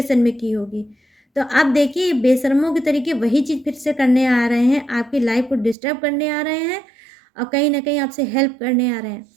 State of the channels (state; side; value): drops out; left; at 5.8 s